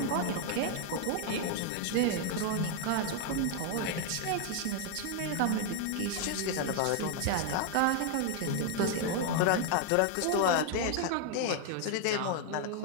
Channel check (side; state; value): both; different; correlation 0.00